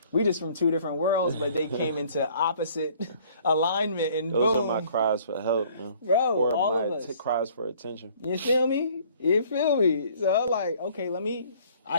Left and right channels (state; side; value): inverted; both; correlation -0.56